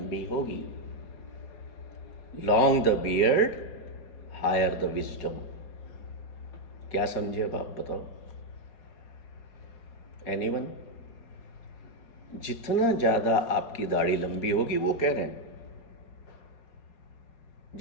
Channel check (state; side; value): late; right; 4.3 ms